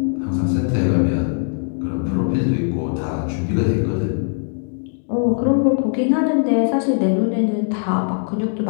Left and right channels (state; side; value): silent; right; digital silence